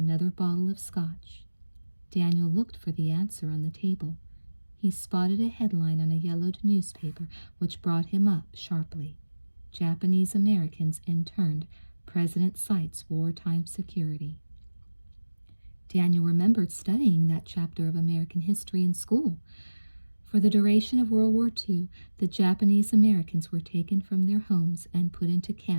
bottle of scotch. Daniel looked for the answer on the table. He spotted a headline on a yellowed newspaper which brought him up sharply. "Japanese Americans interned. President cites wartime security." Daniel remembered studying that chapter of American history in school. For the duration of World War II, the Japanese Americans were taken from their homes and put into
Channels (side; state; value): both; inverted; correlation -1.00